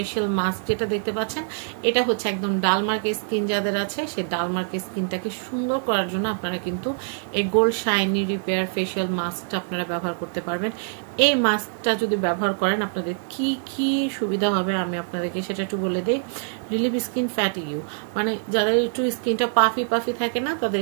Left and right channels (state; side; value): silent; left; digital silence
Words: mask যেটা দেখতে পাচ্ছেন, এটা হচ্ছে একদম ডালমার্কের স্কিন যাদের আছে সেই ডালমার্কের স্কিনটাকে সুন্দর করার জন্য আপনারা কিন্তু এই গোল্ড শাইনি রিপেয়ার ফেশিয়াল মাস্কটা আপনারা ব্যবহার করতে পারবেন। এই মাস্কটা যদি ব্যবহার করেন আপনাদের কি কি সুবিধা হবে আমি আপনাদেরকে সেটা একটু বলে দিই। রিলিভ স্কিন ফ্যাটিগিউ, মানে যাদের একটু স্কিনটা পাফি পাফি থাকে না, তাদের